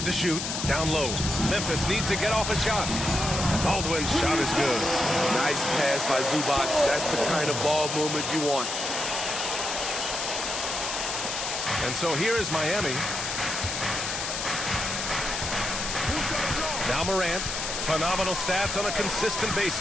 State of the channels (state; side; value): noise; left; hiss, 3 dB below the sound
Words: to shoot. Down low. Memphis needs to get off a shot. Baldwin's shot is good. Nice pass by Zubac. That's the kind of ball movement you want. And so here is Miami. Now Morant. Phenomenal stats on a consistent